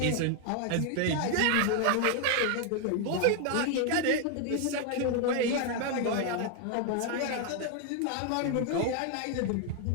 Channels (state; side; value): different; both; correlation 0.00